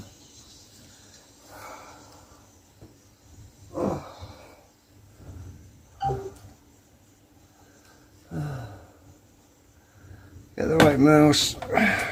Get the right mouse.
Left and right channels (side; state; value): both; identical; correlation 1.00